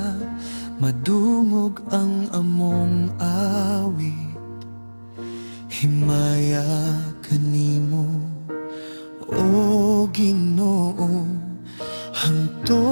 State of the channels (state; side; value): inverted; both; correlation -1.00